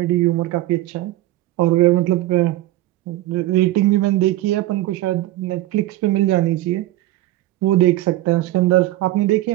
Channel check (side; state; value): left; quieter; 16.0 dB